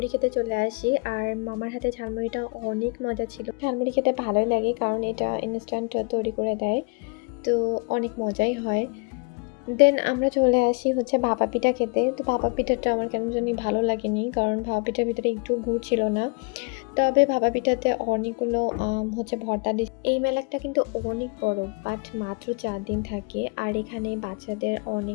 খেতে চলে আসি, আর মামার হাতে ঝালমুড়িটা অনেক মজা ছিল। ঝালমুড়ি খেতে ভালোই লাগে কারণ এটা ইনস্ট্যান্ট তৈরি করে দেয়, তো অনেক মজাই হয়। দেন আমরা চলে আসি হচ্ছে ভাপা পিঠা খেতে। তো ভাপা পিঠাটা আমার কেন জানি ভালো লাগেনি, কারণ ভাপা পিঠার ভিতরে একটু গুড় ছিল না। তবে ভাপা পিঠাতে অনেকগুলো হচ্ছে ভর্তা দিচ্ছে। এই মেলাটা কিন্তু অনেক বড়, বাট মাত্র 4 দিন থাকে। আর এখানে বাচ্চাদের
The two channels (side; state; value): right; quieter; 31.8 dB